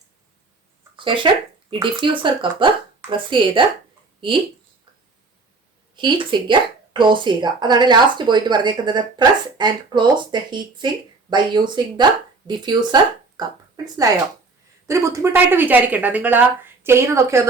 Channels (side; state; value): left; quieter; 3.9 dB